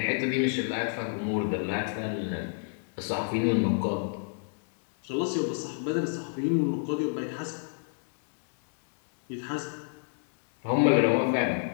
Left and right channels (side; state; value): right; silent; digital silence